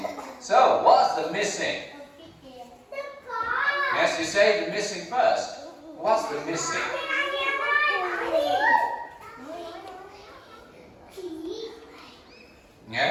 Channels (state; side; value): identical; both; correlation 1.00